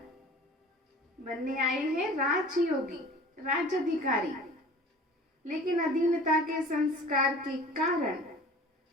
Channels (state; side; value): normal; both; correlation 0.43